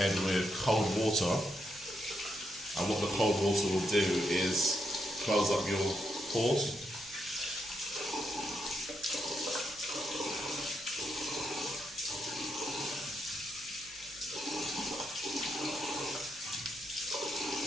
with cold water. And what the cold water will do is close up your pores.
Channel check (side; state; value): right; noise; hum, 24 dB below the sound